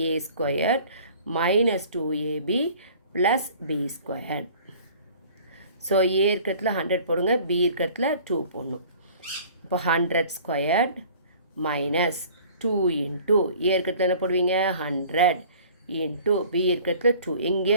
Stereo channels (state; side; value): inverted; both; correlation -0.48